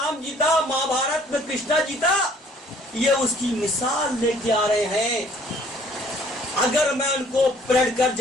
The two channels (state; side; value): normal; both; correlation 0.58